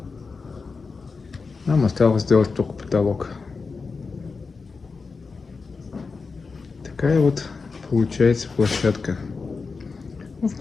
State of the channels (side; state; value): right; quieter; 4.6 dB